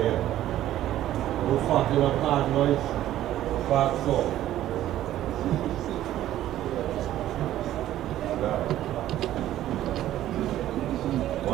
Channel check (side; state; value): left; quieter; 13.1 dB